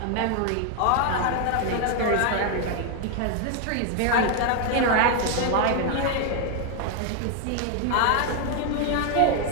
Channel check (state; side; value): different; both; correlation 0.00